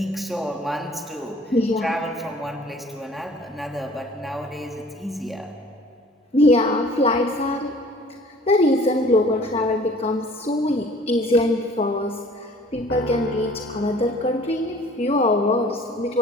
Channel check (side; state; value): both; normal; correlation 0.51